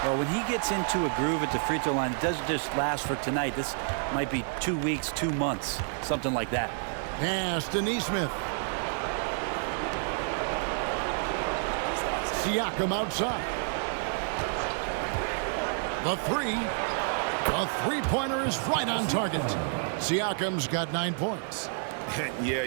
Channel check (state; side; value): silent; left; 58 dB below the other